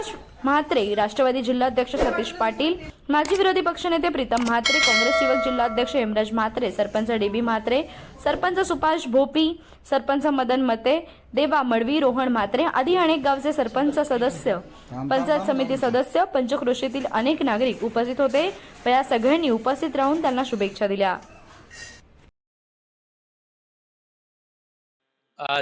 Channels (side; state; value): both; identical; correlation 1.00